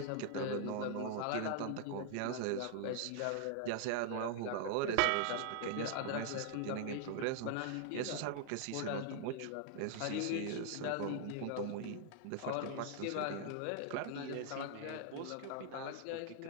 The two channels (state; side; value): different; both; correlation 0.00